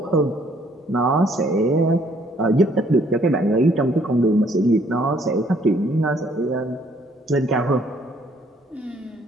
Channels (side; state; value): both; normal; correlation 0.64